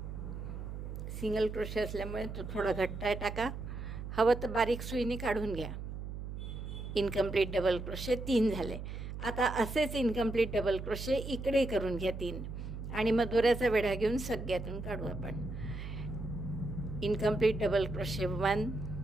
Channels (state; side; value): noise; right; hum, 7 dB below the sound